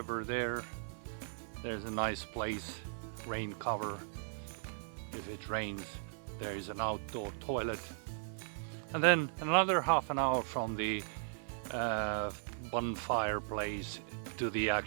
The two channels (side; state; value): left; silent; 53 dB below the other